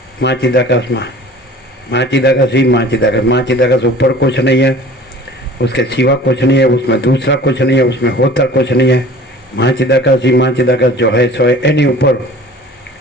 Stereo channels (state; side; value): normal; both; correlation 0.45